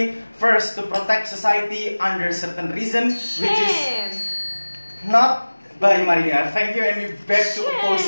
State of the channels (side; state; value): both; inverted; correlation -1.00